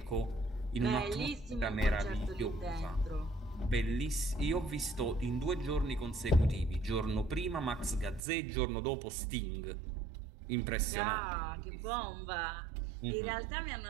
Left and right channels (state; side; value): drops out; left; at 8.2 s